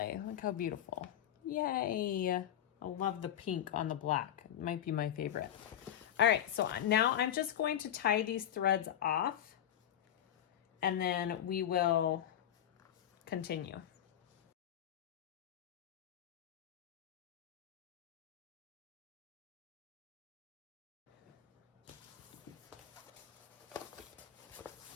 Look how beautiful. Yay. I love the pink on the black. It might be my favorite. All right, so now I'm just going to tie these threads off, and then we will continue.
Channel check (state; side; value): quieter; right; 10.7 dB